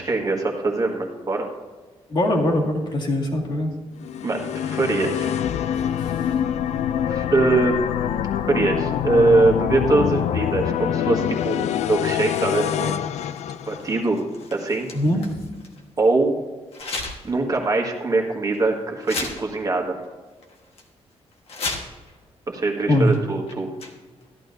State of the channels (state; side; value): normal; both; correlation 0.68